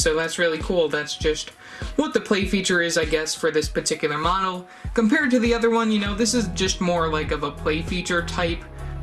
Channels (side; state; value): both; identical; correlation 1.00